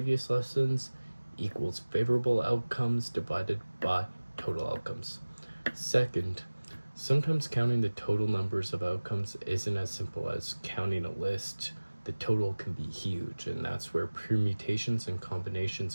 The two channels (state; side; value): inverted; both; correlation -1.00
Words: lessons equals favorable outcomes divided by total outcomes. Second, sometimes counting the total numbers of outcomes isn't as simple as counting a list. The total can be huge, and that's where permutations and